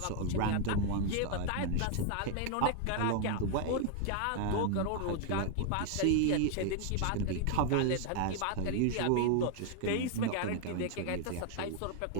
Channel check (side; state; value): both; different; correlation 0.00